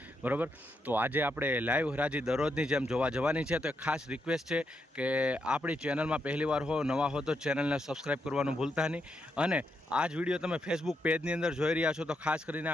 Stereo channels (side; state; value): both; normal; correlation 0.81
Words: બરાબર। તો આજે આપણે લાઈવ હરાજી દરરોજની જેમ જોવા જવાની છે। તો ખાસ રિક્વેસ્ટ છે કે આપણી ચેનલમાં પહેલીવાર હો, નવા હો તો ચેનલને સબસ્ક્રાઈબ કરવાનું ભૂલતા નહીં। અને આ જ વિડીયો તમે ફેસબુક પેજની અંદર જોઈ રહ્યા છો તો ખાસ કરીને